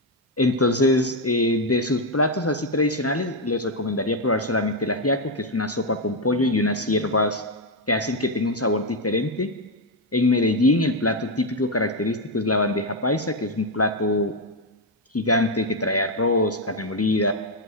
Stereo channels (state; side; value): normal; both; correlation 0.04